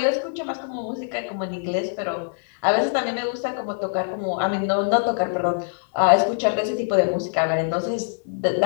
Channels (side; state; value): right; silent; digital silence